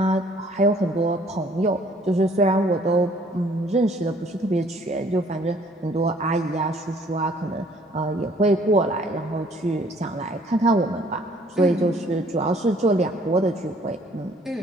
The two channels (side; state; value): both; normal; correlation 0.59